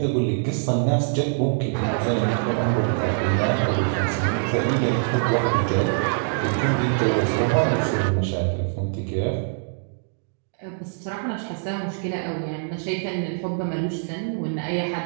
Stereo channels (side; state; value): left; silent; digital silence